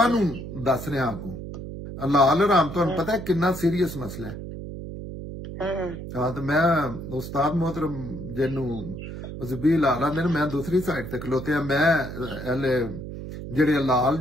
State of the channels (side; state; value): right; noise; hum, 9 dB below the sound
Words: ਨੂੰ ਦੱਸ ਰਿਹਾ ਅੱਗੋਂ। ਹਲਾਲ ਹਰਾਮ ਤੁਹਾਨੂੰ ਪਤਾ ਕਿੰਨਾ ਸੀਰੀਅਸ ਮਸਲਾ ਹੈ। ਹਾਂ, ਤੇ ਮੈਂ ਉਸਤਾਦ मोहतरम ਜਿਹਨੂੰ ਜ਼ਬੀਲ ਆਲਾ ਨੇ, ਮੈਂ ਦੂਸਰੀ ਸਾਈਡ ਤੇ ਖਲੋਤਿਆ। ਮੈਂ ਜਿਹੜੇ ਹਲਾਲ